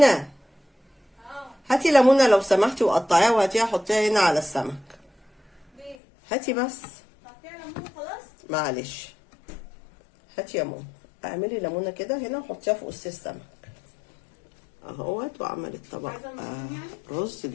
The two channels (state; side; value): drops out; right; at 6.0 s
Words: هاتي ليمونه لو سمحتي وقطعيها وهاتيها حطيها هنا على السمك. هاتي بس، معلش هاتي يا ماما، اعملي ليمونه كده هنا وحطيها في قص السمك اهوت. وعملت طبق رز